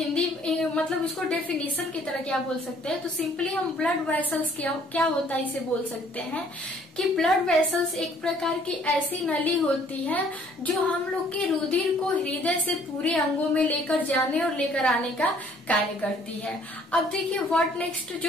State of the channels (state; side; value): normal; both; correlation 0.59